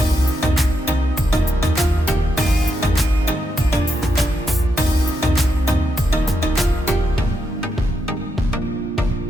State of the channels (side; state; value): both; normal; correlation 0.82